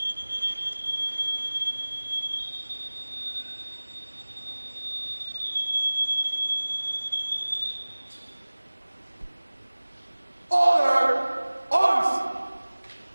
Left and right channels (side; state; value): both; inverted; correlation -1.00